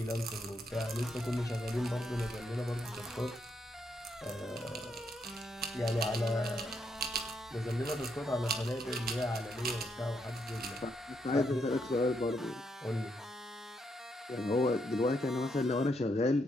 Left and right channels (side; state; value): both; normal; correlation 0.78